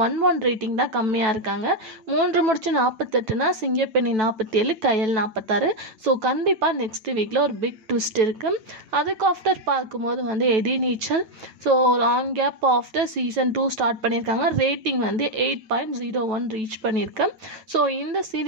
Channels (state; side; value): late; left; 9.2 ms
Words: 1 ரேட்டிங் தான் கம்மியாக இருக்காங்க. 3 முடிச்சு 48னா சிங்கப்பெண்ணே 47, கயல் 46. ஸோ கண்டிப்பாக நெக்ஸ்ட் வீக்கில் ஒரு பிக் ட்விஸ்ட் இருக்குது. அதுக்கு ஆஃப்டர் பார்க்கும்போது வந்து Ethirneechal, so long gap after season 2 start பண்ணியிருக்காங்க. ரேட்டிங் வந்து 8.01 ரீச் பண்ணியிருக்கேன். ஸோ இந்த